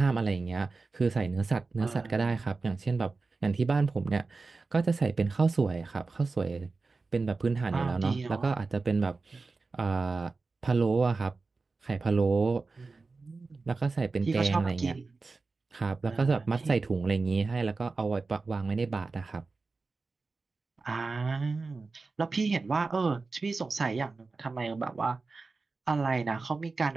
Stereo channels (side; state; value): left; quieter; 4.0 dB